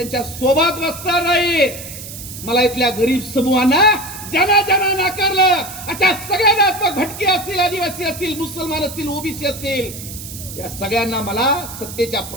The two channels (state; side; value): noise; right; hiss, 12 dB below the sound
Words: सोबत बसणार नाही. मला इथल्या गरीब समूहांना ज्यांना ज्यांना नाकारलं, अशा सगळ्यांना, भटके असतील, आदिवासी असतील, मुसलमान असतील, ओबीसी असतील, या सगळ्यांना मला सत्तेच्या